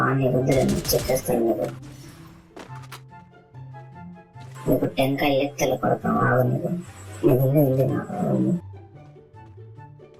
నీకు చెప్పేస్తాను. నీకు టెంకాయ లెక్కలు పడతాం. ఆగు నీకు ఉంది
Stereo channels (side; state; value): both; identical; correlation 1.00